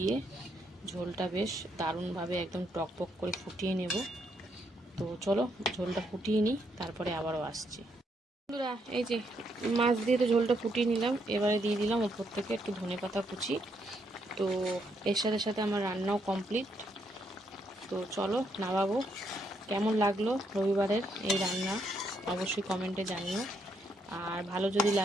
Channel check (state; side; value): normal; both; correlation 0.75